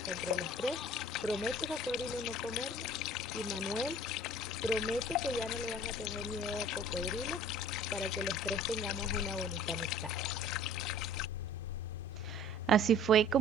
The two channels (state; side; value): normal; both; correlation 0.48